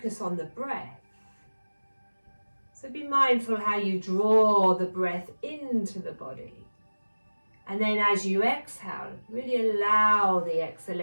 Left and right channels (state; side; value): inverted; both; correlation -1.00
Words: on the breath. So be mindful how you draw the breath into the body. And then as you exhale, really allow the